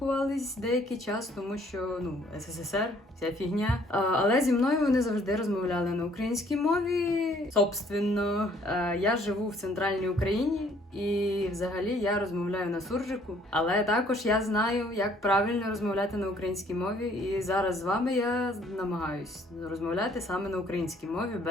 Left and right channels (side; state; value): both; normal; correlation 0.61